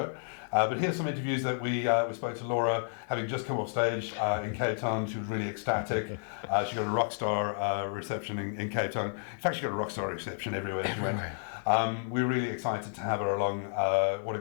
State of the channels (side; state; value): right; silent; 57 dB below the other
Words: But here's some interviews that we spoke to Laura, having just come off stage in Cape Town. She was really ecstatic. She got a rock star reception in Cape Town. In fact, she got a rock star reception everywhere she went. We were really excited to have her along. What a